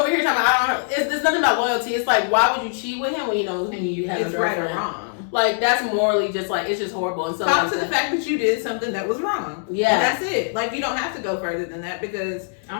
here talking about I don't. There's nothing about loyalty. It's like, why would you cheat with him when you know you have it's a right girlfriend? or wrong. Like that's morally just like it's just horrible. And so talk to the fact that you did something that was wrong. Yeah, and that's it. Like you don't have to go further than that because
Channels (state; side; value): silent; right; 64 dB below the other